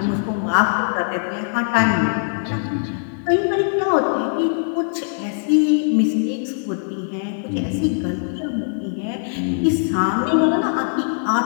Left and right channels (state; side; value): silent; right; digital silence